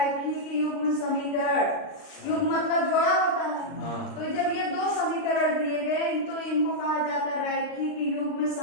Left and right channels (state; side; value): late; right; 39 ms